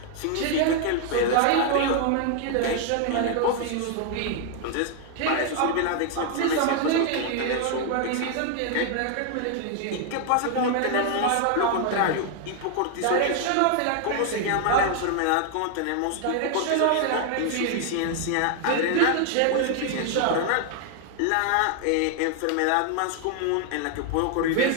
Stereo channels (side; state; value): both; different; correlation 0.00